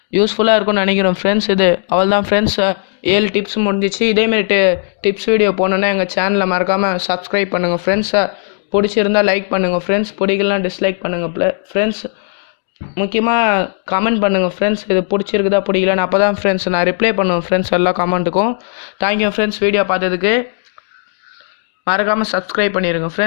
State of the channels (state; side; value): silent; right; digital silence